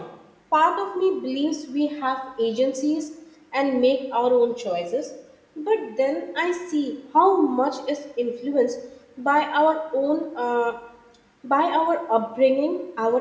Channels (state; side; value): identical; both; correlation 1.00